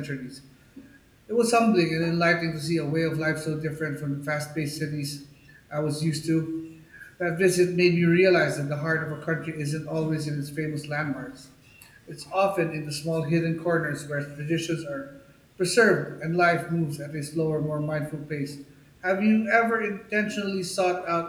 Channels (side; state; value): both; identical; correlation 1.00